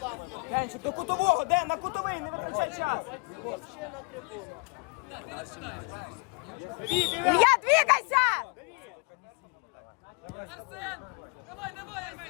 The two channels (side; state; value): right; quieter; 31.6 dB